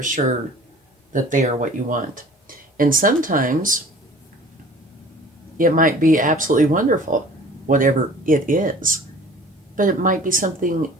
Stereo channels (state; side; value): normal; both; correlation 0.48